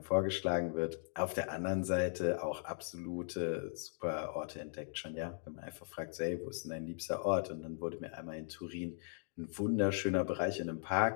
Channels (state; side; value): silent; right; digital silence